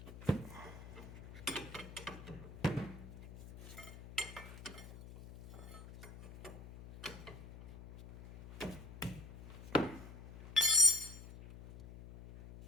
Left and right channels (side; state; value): left; noise; hum, 14 dB below the sound